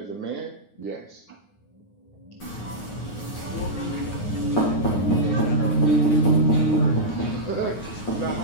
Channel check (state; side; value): late; right; 9.6 ms